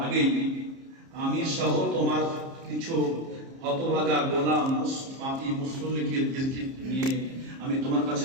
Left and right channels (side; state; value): left; late; 30 ms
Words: আগেই আমি সহ তোমার কিছু হতভাগা গোলাম পাপী মুসল্লিকে নিয়ে আমি তোমার কাছে